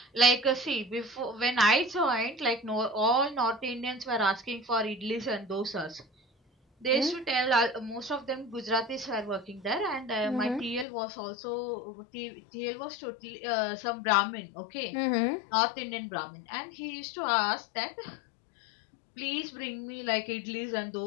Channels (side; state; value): right; drops out; at 10.9 s